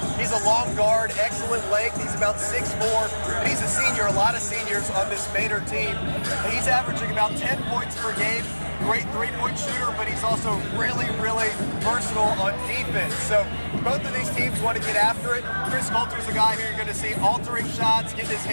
He's a long guard, excellent length. He's about 6'4", and he's a senior. A lot of seniors on this Manor team. And he's averaging about 10 points per game. Great three-point shooter, but he's also really, really versatile on defense. So both of these teams want to get after it. Chris Coulter's a guy who you're going to see altering shots, getting his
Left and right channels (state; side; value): inverted; both; correlation -1.00